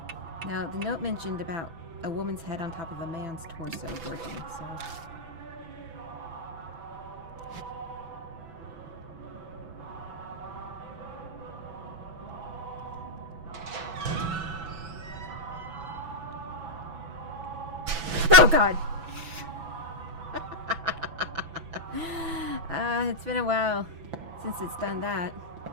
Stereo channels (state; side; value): late; left; 6.0 ms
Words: Now, the note mentioned about a woman's head on top of a man's torso working, so... Oh, God! It's been a while since it's done that.